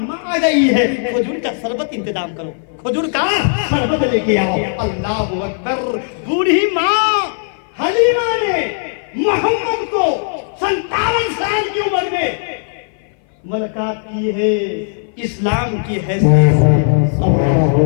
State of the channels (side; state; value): right; silent; 57 dB below the other